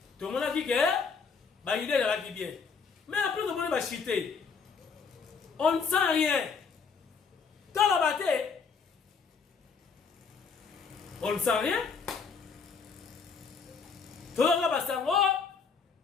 Tout le monde a dit que bah idée là qui bien. Mais après tout le monde va chiter. On ne sent rien. Dans la bataille, on ne sent rien. Tout le monde va s'en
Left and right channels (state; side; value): quieter; right; 5.5 dB